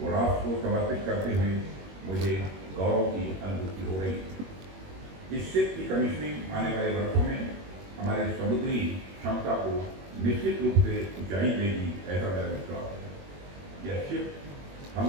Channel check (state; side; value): late; left; 21 ms